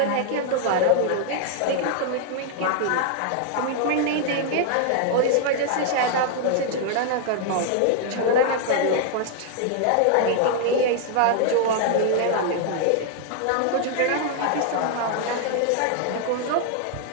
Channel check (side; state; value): both; different; correlation 0.00